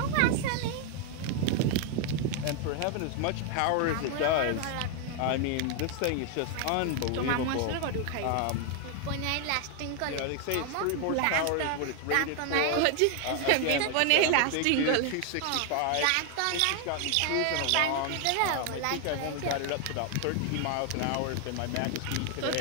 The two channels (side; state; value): both; different; correlation 0.00